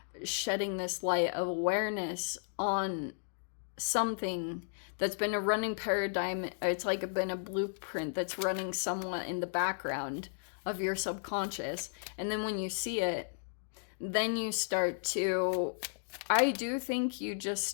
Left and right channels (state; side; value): silent; right; digital silence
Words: shedding this light of awareness on something that's been a running paradigm, it's like been a blueprint that's running somewhat in the background of your subconscious. And then when you see it, then you start to, I do think you just